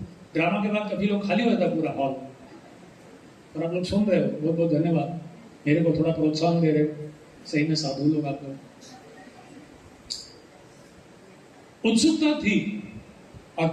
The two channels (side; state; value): both; identical; correlation 1.00